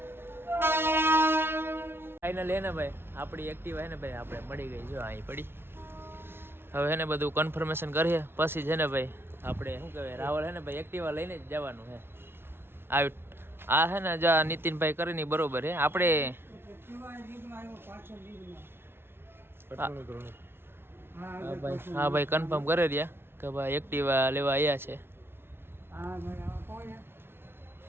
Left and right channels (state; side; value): late; left; 0.11 ms